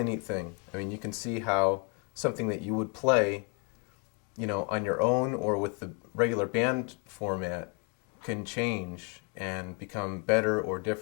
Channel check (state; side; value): quieter; right; 36.7 dB